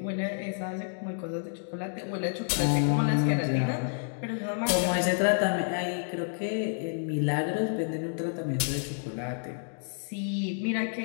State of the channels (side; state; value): right; silent; digital silence